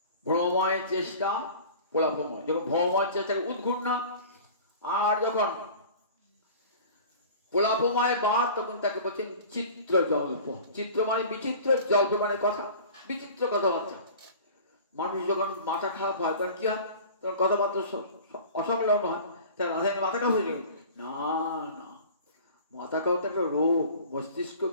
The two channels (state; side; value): inverted; both; correlation -0.41